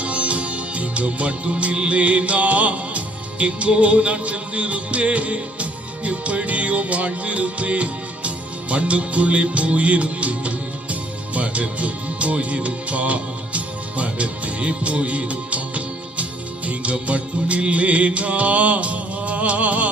நீங்க மட்டும் இல்லேனா எங்கோ நான் சென்றிருப்பேன், எப்படியோ வாழ்ந்திருப்பேன், மண்ணுக்குள்ளே போயிருப்பேன், மறந்தும் போயிருப்பா, மறந்தே போயிருப்பா. நீங்க மட்டும் இல்லேனா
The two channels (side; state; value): both; normal; correlation 0.63